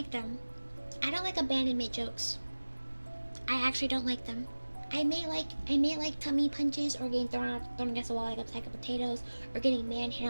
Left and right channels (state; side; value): inverted; both; correlation -1.00